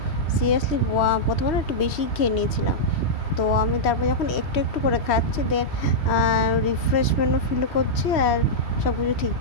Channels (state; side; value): late; right; 3.1 ms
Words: সিরিয়াসলি প্রথমে একটু বেশি খেয়ে নিয়েছিলাম। তো আমি তারপর যখন একটু একটু করে খাচ্ছি, দেন রিফ্রেশমেন্টও ফিল করছি, আর সব কিছু